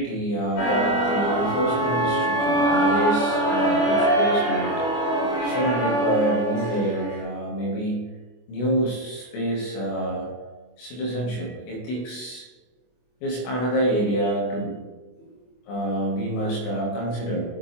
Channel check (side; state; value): right; late; 24 ms